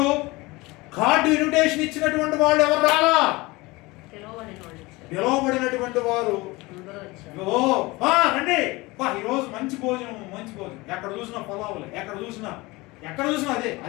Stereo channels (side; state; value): right; quieter; 22.5 dB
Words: కార్డు ఇన్విటేషన్ ఇచ్చినటువంటి వాళ్ళు ఎవరు రాలా, పిలవబడినటువంటి వారు రండి ఈరోజు మంచి భోజనం, మంచి భోజనం, ఎక్కడ చూసినా పొలావులే, ఎక్కడ చూసినా అదే